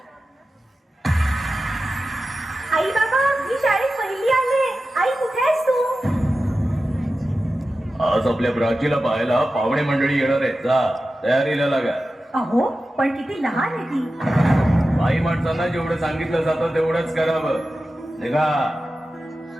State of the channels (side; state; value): both; normal; correlation 0.93